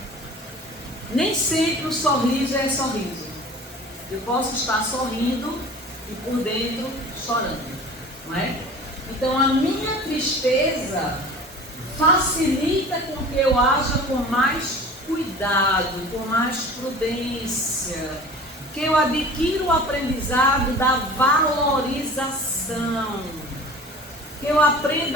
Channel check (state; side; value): normal; both; correlation 0.41